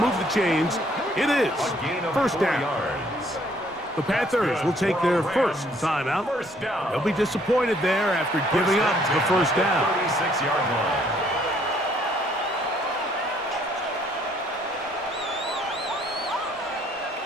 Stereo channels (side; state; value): both; normal; correlation 0.64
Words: the chains. It is 1st down. The Panthers will take their first timeout. They'll be disappointed there after giving up the 1st down. 36-yard line.